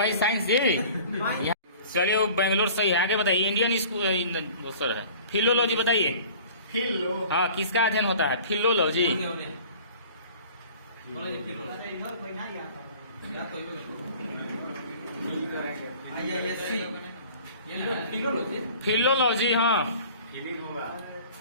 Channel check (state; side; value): inverted; both; correlation -0.46